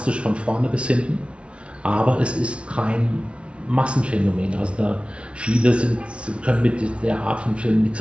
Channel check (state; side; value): late; left; 0.060 ms